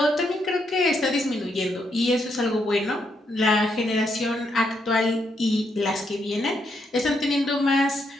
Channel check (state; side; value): normal; both; correlation 0.78